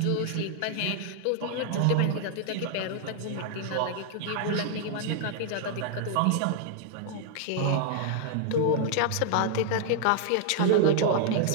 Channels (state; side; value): different; both; correlation -0.01